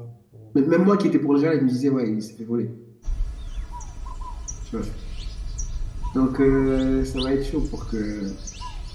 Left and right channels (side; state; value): both; identical; correlation 1.00